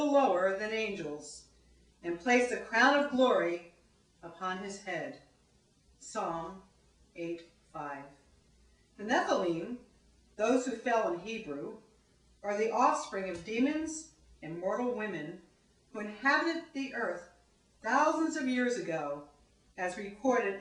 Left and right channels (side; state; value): both; identical; correlation 1.00